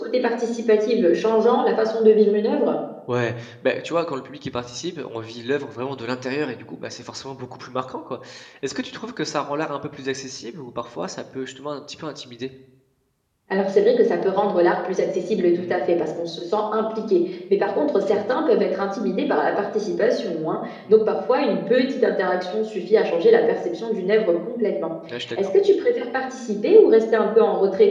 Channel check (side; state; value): both; identical; correlation 1.00